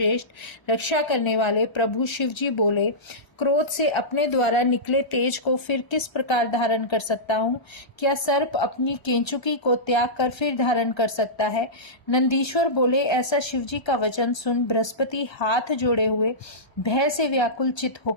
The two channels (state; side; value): late; right; 1.3 ms